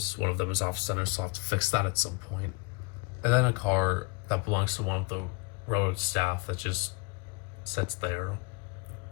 one of them is off center, so I'll have to fix that at some point. And then a car that belongs to one of the railroad staff that just sits there.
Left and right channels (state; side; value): quieter; right; 27.6 dB